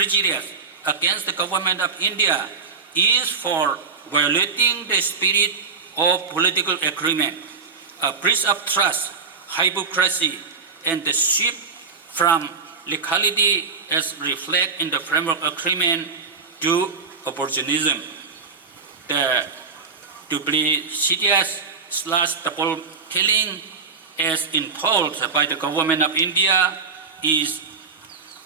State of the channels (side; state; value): left; quieter; 5.1 dB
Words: against the government of India is for violating the spirit of political agreement, a breach of trust, hypocrisy, and the shift from legality as reflected in the framework agreement to opportunism. The duplicitous double telling as imposed by the government of India is